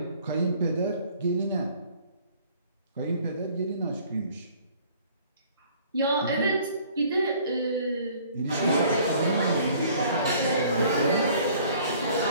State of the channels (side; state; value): both; inverted; correlation -0.55